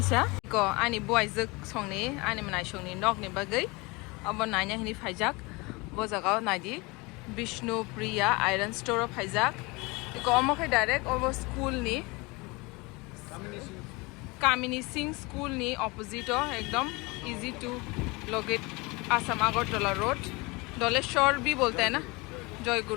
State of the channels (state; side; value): quieter; right; 25.6 dB